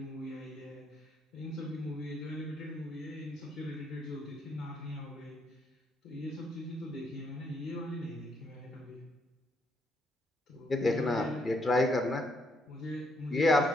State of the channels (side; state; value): both; normal; correlation 0.74